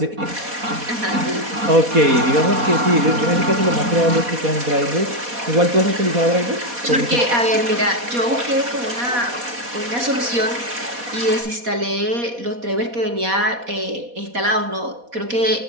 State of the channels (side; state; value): left; late; 4.2 ms